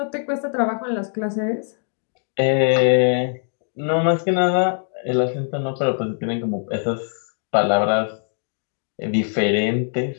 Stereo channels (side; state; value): right; silent; 61 dB below the other